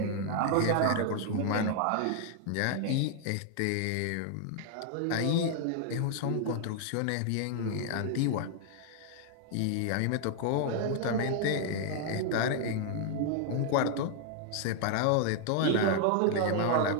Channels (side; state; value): both; different; correlation 0.00